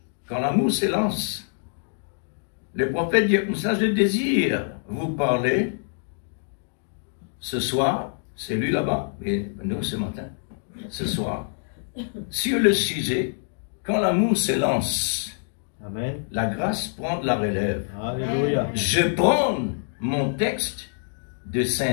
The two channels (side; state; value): right; silent; digital silence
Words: quand l'amour s'élance. Le prophète dit, ça je désire vous parler ce soir, c'est lui là-bas, et nous ce matin, ce soir, sur le sujet, quand l'amour s'élance, Amen. La grâce prend de la relève. Alléluia. Je prends mon texte de